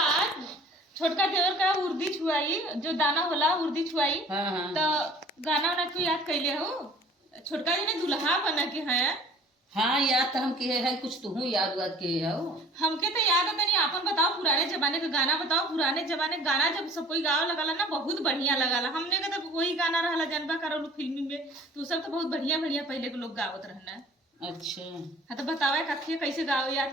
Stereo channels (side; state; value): both; normal; correlation 0.50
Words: छोटका देवर का उर्दी छुआई, जो दाना होला उर्दी छुआई। तो गाना वाना क्यों याद कैले हो? छोटका जी ने दुल्हा बना के है। हाँ याद तो हम किए है, कुछ तुहू याद वाद किए हो। हमके तो याद है, तनी आपन बताओ पुराने जमाने का गाना बताओ। पुराने जमाने गाना जब सब कोई गाँव लगाला ना बहुत बढ़िया लगाला। हमने का तो वही गाना रहला जनबा करो फिल्मी में, तो सब तो बहुत बढ़िया बढ़िया पहले के लोग गावत रहना। अच्छा हाँ तो बतावे कथिया कैसे गाओ